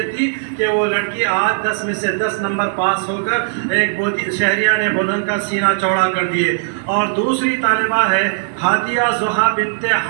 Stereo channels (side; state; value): left; silent; 68 dB below the other